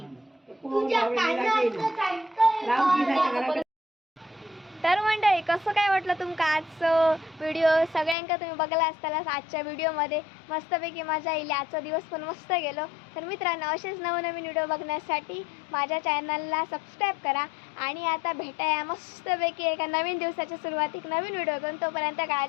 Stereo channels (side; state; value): right; drops out; at 8.2 s